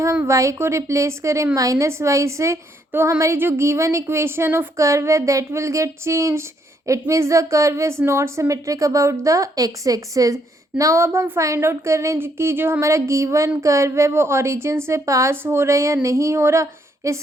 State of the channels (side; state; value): both; normal; correlation 0.72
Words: y को replace करें -y से, तो हमारी जो given equation of curve है that will get change. It means the curve is not symmetric about the x axis. Now अब हम फाइंड आउट कर रहे हैं कि जो हमारा गिवन कर्व है वो ओरिजिन से पास हो रहा है या नहीं हो रहा।